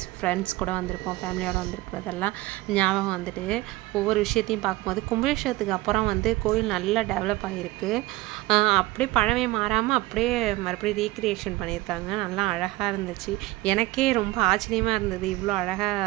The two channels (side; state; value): left; quieter; 19.2 dB